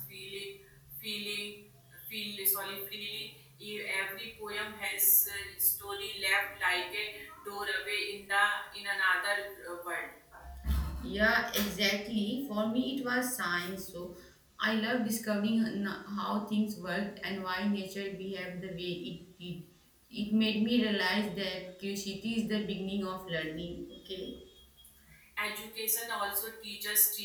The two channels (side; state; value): both; identical; correlation 1.00